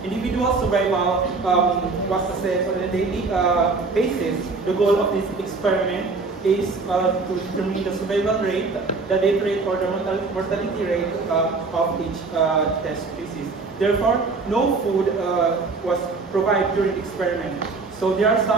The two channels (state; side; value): quieter; left; 4.1 dB